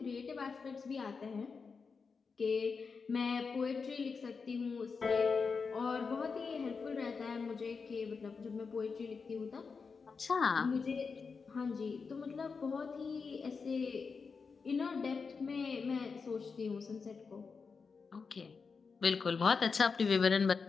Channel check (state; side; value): quieter; right; 5.1 dB